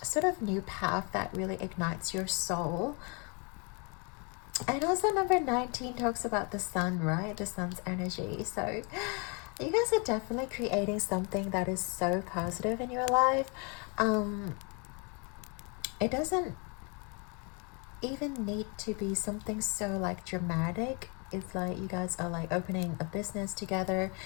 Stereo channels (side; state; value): right; quieter; 33.2 dB